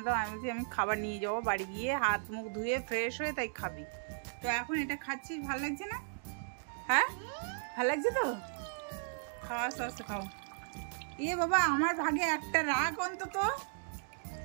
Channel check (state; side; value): silent; left; digital silence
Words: দাও। আমি বলছি আমি খাবার নিয়ে যাবো, বাড়ি গিয়ে হাত মুখ ধুয়ে ফ্রেশ হয়ে তাই খাবি। তো এখন এটা খাচ্ছিস, ভালো লাগছে না? হ্যাঁ, ভালো লাগছে তো? খাওয়া, আস্তে আস্তে খাও। ইয়ে বাবা, আমার ভাগে একটা রাগ অন্তত।